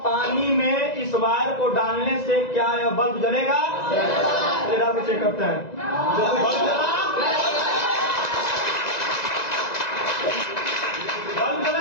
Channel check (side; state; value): right; late; 1.9 ms